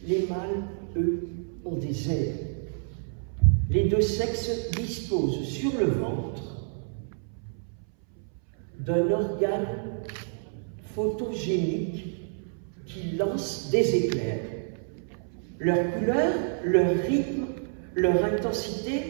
Les mâles, eux, ont des ailes. Les deux sexes disposent sur le ventre d'un organe photogénique qui lance des éclairs. Leur couleur, leur rythme, leur intensité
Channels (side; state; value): left; silent; 59 dB below the other